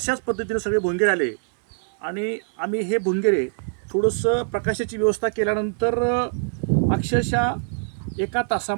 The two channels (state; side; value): silent; left; 63 dB below the other